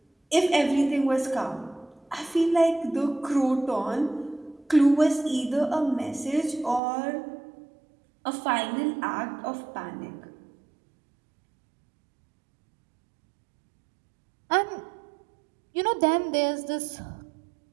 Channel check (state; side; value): drops out; left; at 6.8 s